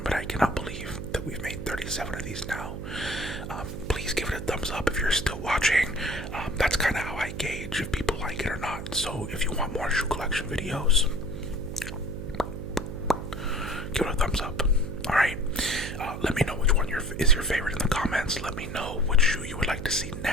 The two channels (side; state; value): right; noise; hum, 7 dB below the sound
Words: but I cannot believe that we've made 37 of these now. Please give it a thumbs up if you're still watching. That's kind of how I gauge if people like it or not. So if you want more shoe collection videos, give it a thumbs up. Alright, let me know which one is your favorite in the comments. Let me know which shoe you would like to see